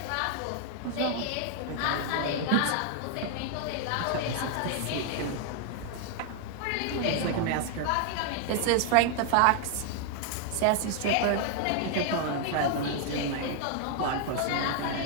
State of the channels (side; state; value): both; different; correlation 0.00